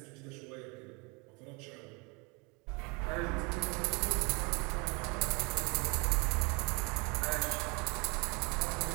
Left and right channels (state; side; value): quieter; left; 29.9 dB